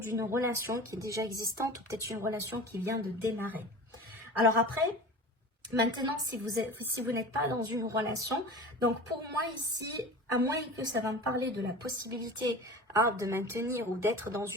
relation qui est déjà existante ou peut-être une relation qui vient de démarrer. Alors après, maintenant, si vous n'êtes pas dans une relation, donc pour moi ici, à moins que ça va me parler de la possibilité de maintenir ou d'être dans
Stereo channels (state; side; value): normal; both; correlation 0.36